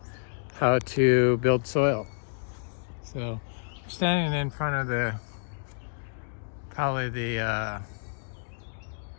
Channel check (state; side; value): silent; right; digital silence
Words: how to build soil. So I'm standing in front of probably the